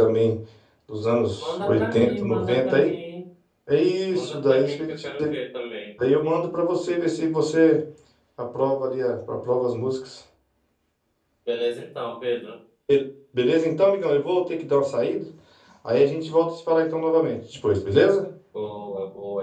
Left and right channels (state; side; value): identical; both; correlation 1.00